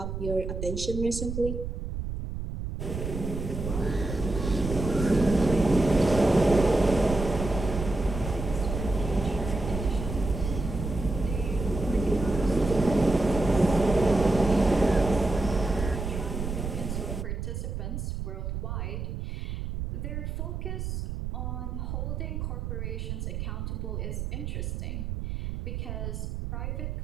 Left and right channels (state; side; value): noise; right; rumble, 4 dB below the sound